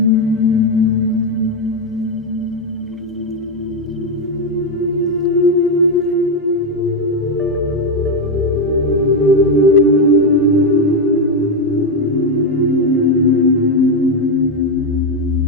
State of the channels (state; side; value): normal; both; correlation 0.06